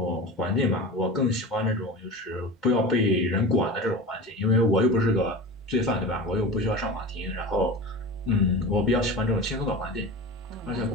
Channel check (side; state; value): both; normal; correlation 0.31